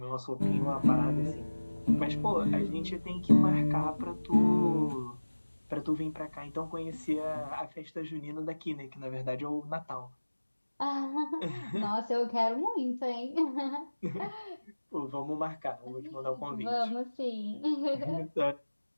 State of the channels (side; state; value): both; inverted; correlation -1.00